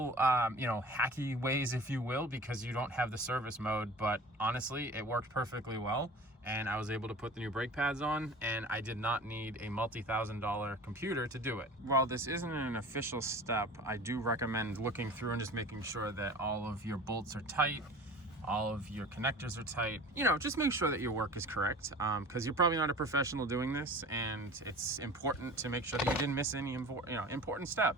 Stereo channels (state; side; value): normal; both; correlation 0.40